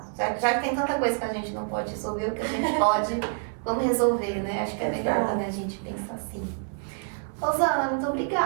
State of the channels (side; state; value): left; silent; 58 dB below the other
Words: Já que tem tanta coisa que a gente não pode resolver, o que a gente pode, vamos resolver, né? Acho que é melhor, né, a gente pensar assim. Rosana, muito